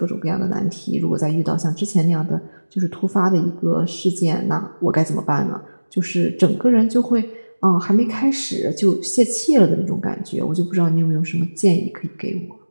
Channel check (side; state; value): both; inverted; correlation -1.00